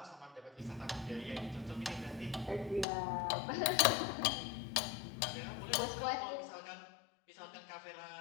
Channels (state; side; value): drops out; right; at 2.9 s